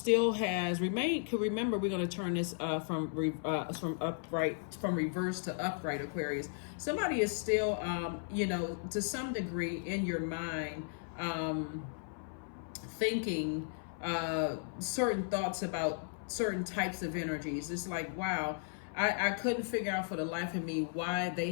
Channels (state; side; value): silent; right; 54 dB below the other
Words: has remained. Could remember, we're going to turn this from reverse to upright, Aquarius. Somebody is still, to some degree in your mind, thinking certain thoughts about certain types of energies. It's like, wow, I couldn't figure out for the life of me why they